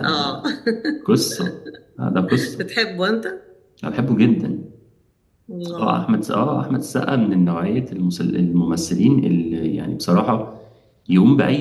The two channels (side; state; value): both; identical; correlation 1.00